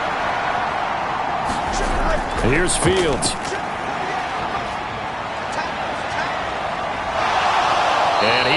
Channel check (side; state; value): both; identical; correlation 1.00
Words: Here's Fields. And